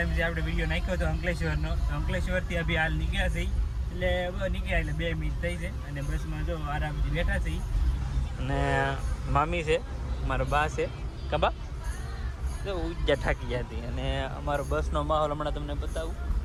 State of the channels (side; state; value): both; identical; correlation 1.00